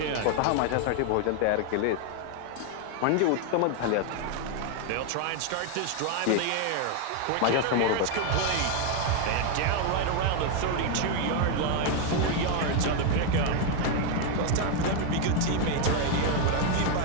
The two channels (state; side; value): different; both; correlation 0.01